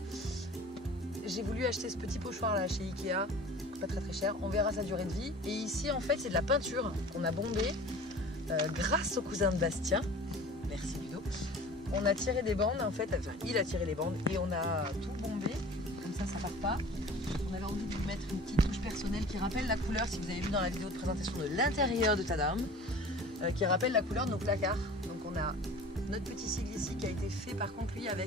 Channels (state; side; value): normal; both; correlation 0.42